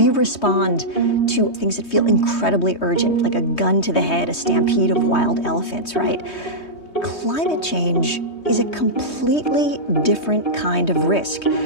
respond to things that feel incredibly urgent, like a gun to the head, a stampede of wild elephants, right? Climate change is a completely different kind of risk.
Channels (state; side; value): late; right; 3.2 ms